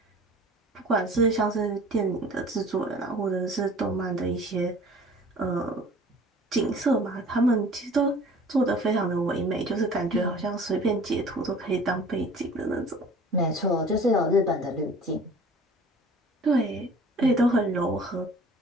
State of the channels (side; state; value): both; normal; correlation 0.47